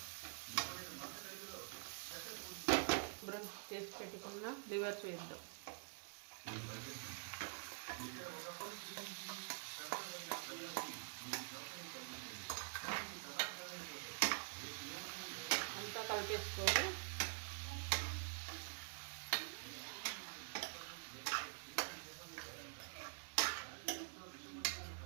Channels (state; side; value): silent; left; digital silence